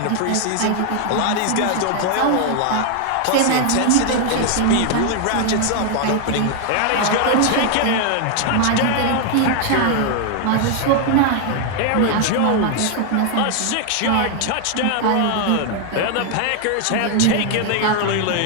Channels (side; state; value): both; different; correlation 0.00